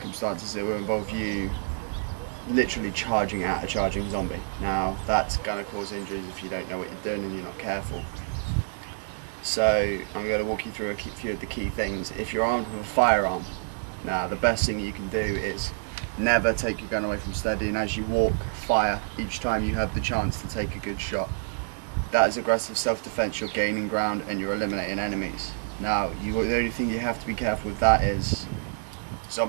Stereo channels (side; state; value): left; silent; digital silence